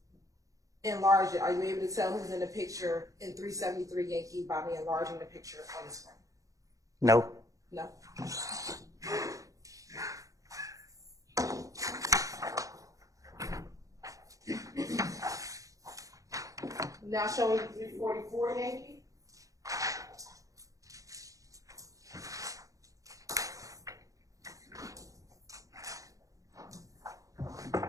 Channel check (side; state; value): left; late; 0.16 ms